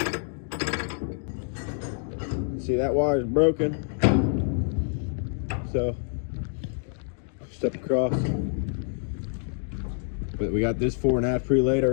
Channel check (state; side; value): silent; right; 60 dB below the other